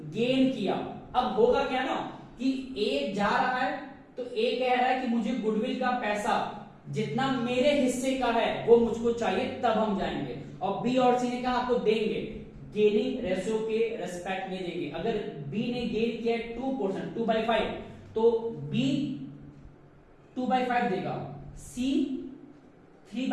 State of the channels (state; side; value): identical; both; correlation 1.00